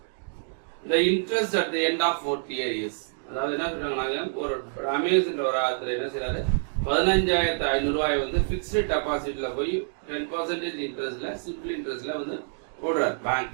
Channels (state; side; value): silent; left; digital silence